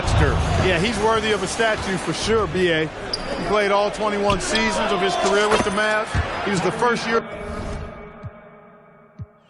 Dirk. Yeah, he's worthy of a statue for sure, B.A. He played all 21 seasons of his career with the Mavs. He was the first year.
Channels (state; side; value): identical; both; correlation 1.00